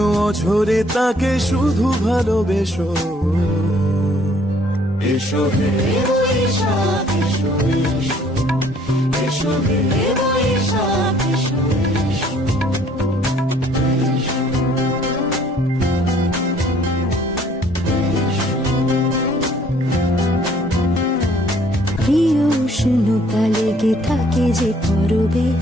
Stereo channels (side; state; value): both; normal; correlation 0.60